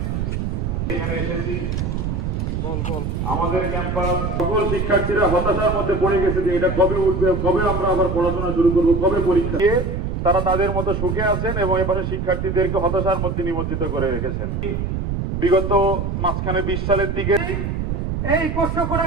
এখানে এসেছি আমাদের ক্যাম্পাস সকল শিক্ষার্থীরা হতাশার মধ্যে পড়ে গেছে যে এটা কবে উঠবে, কবে আমরা আবার পড়াশোনা শুরু করব, কবে পরীক্ষা। তারা তাদের মতো সুখে আছেন এবং এপাশে শিক্ষার্থীদেরকে হতাশার মধ্যে নিমজ্জিত করে রেখেছেন। বিগত মাঝখানে 20 সালের দিকে এই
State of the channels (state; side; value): noise; right; rumble, 2 dB below the sound